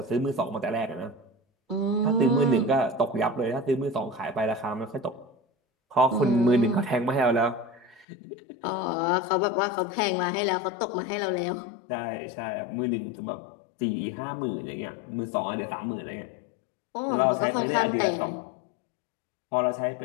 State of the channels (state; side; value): drops out; right; at 8.1 s